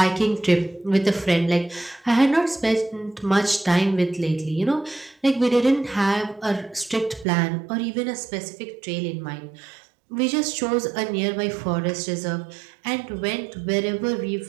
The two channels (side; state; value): left; drops out; at 7.2 s